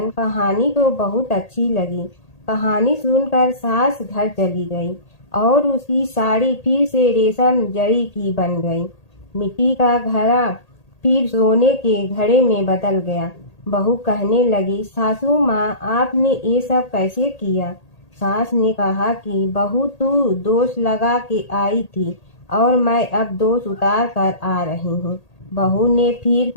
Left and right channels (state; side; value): late; right; 1.8 ms